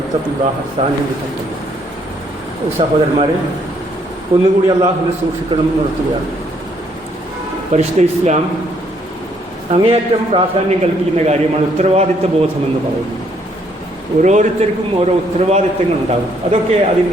الله ثانيا بتقوى الله. സഹോദരന്മാരെ, ഒന്നുകൂടി അള്ളാഹുവിനെ സൂക്ഷിക്കണം നിർത്തുകയാണ്. പരിശുദ്ധ ഇസ്ലാം അങ്ങേയറ്റം പ്രാധാന്യം കൽപ്പിക്കുന്ന കാര്യമാണ് ഉത്തരവാദിത്വ ബോധമെന്ന് പറയുന്നത്. ഓരോരുത്തർക്കും ഓരോ ഉത്തരവാദിത്തങ്ങൾ ഉണ്ടാകും. അതൊക്കെ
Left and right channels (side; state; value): both; normal; correlation 0.68